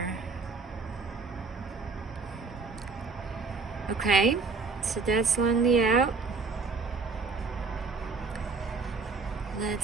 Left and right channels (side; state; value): left; quieter; 4.5 dB